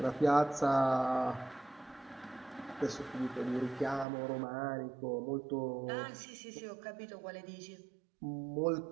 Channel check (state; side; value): drops out; left; at 4.0 s